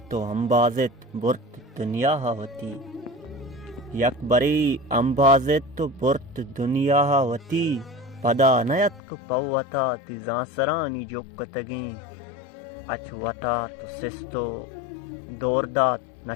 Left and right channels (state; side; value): drops out; right; at 9.0 s